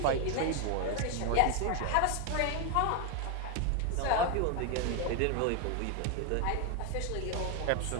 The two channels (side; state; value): both; different; correlation 0.01